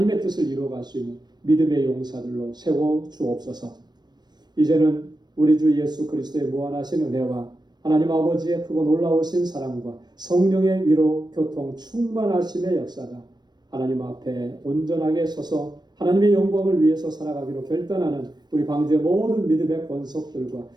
뜻을 이루어갈 수 있는 믿음의 용사들로 세워 주옵소서. 이제는 우리 주 예수 그리스도의 무한하신 은혜와 하나님 아버지의 크고 놀라우신 사랑과 성령의 위로 교통 충만하심의 역사가 하나님 앞에 온전하게 서서 하나님의 영광을 위해서 살아가기로 결단하는 우리 방주의 모든 믿음의 권속들과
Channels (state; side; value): late; left; 0.21 ms